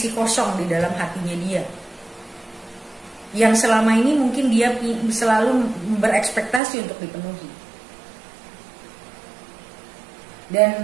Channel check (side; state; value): left; drops out; at 6.6 s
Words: kosong di dalam hatinya dia, yang selama ini mungkin dia selalu berekspektasi untuk dipenuhi.